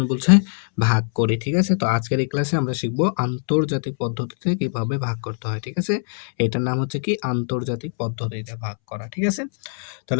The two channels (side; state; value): right; silent; 64 dB below the other